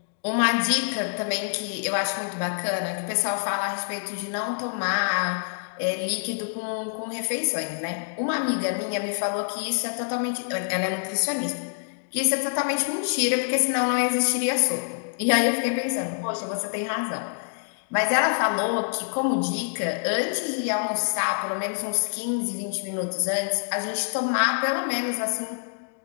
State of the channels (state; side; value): silent; right; digital silence